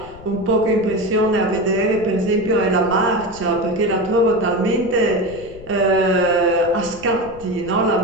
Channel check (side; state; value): left; noise; rumble, 19 dB below the sound